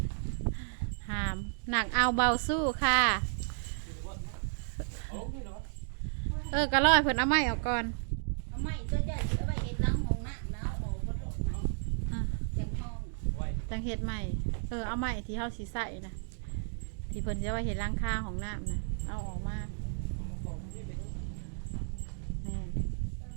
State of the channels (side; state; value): left; silent; digital silence